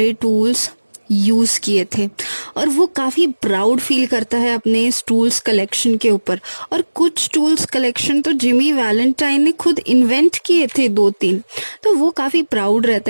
टूल्स यूज़ किए थे। और वो काफ़ी प्राउड फील करता है अपने इस टूल्स कलेक्शन के ऊपर। और कुछ टूल्स कलेक्शन तो जिमी वैलेंटाइन ने खुद इन्वेंट किए थे 2-3, तो वो काफ़ी प्राउड रहता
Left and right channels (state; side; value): inverted; both; correlation -1.00